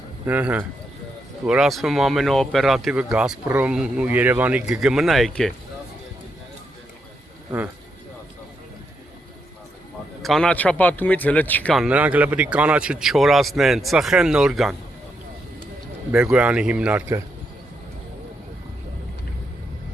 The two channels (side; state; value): both; normal; correlation 0.81